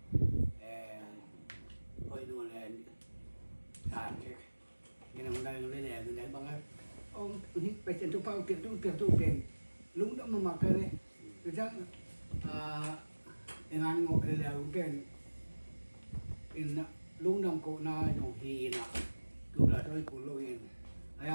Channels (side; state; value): both; inverted; correlation -1.00